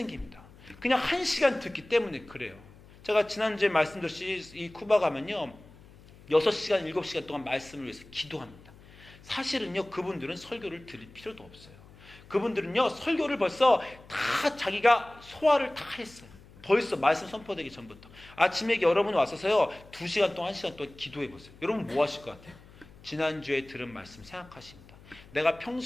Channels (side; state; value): left; noise; hum, 22 dB below the sound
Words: 그냥 1시간 듣기 때문에 그래요. 제가 지난주에 말씀드렸듯이 이 쿠바 가면요 6시간 7시간 동안 말씀을 위해서 기도합니다. 사실은요 그분들은 설교를 들을 필요도 없어요. 그분들은요 설교를 벌써 다 자기가 소화를 다 했어요. 벌써 말씀 선포되기 전부터. 아침에 여러분 왔어서요 2시간 동안 1시간 동안 기도해보세요. 여러분 뭐 하실 것 같아요? 지난주에 들은 말씀 생각하십니다. 내가